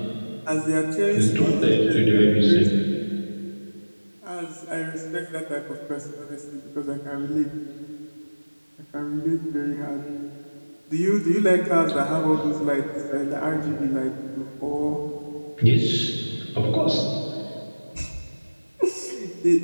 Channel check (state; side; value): inverted; both; correlation -1.00